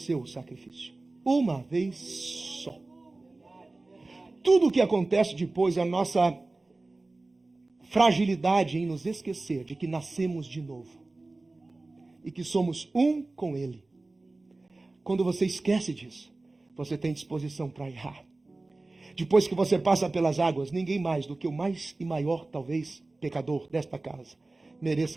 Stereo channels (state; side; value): quieter; left; 3.1 dB